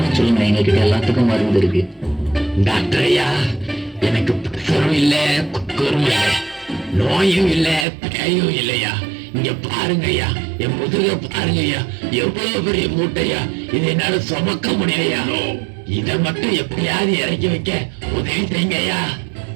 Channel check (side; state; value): left; drops out; at 7.9 s